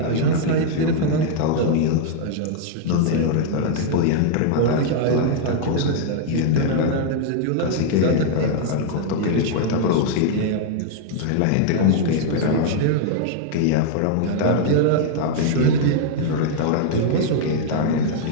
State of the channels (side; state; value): both; different; correlation -0.01